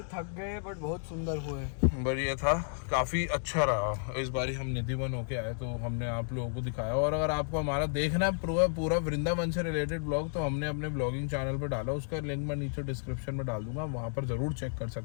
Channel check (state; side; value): silent; right; digital silence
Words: थक गए, बट बहुत सुंदर हुए। बढ़िया था, काफी अच्छा रहा। इस बार हम निधिवन होके आए तो हमने आप लोगों को दिखाया। और अगर आपको हमारा देखना है पूरा वृंदावन से रिलेटेड ब्लॉग, तो हमने अपने ब्लॉगिंग चैनल पर डाला, उसका लिंक मैं नीचे डिस्क्रिप्शन में डाल दूंगा, वहां पर जरूर चेक कर